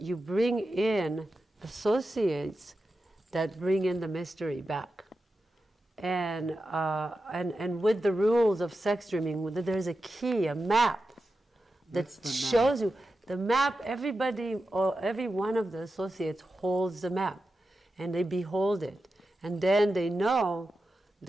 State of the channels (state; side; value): normal; both; correlation 0.91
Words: bring in associates that bring in the mystery back. And with the rules of sex dreaming, there's a key, a map that shows you the map. Everybody, or every one of the associates holds the map, and they behold it, and then they know